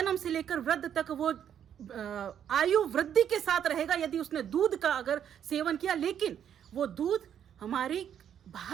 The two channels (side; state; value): left; quieter; 9.2 dB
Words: से लेकर वृद्ध तक वो आयु वृद्धि के साथ रहेगा यदि उसने दूध का अगर सेवन किया। लेकिन वो दूध हमारी